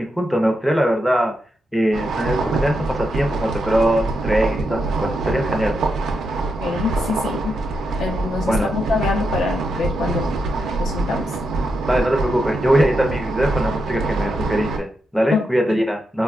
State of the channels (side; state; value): both; normal; correlation 0.84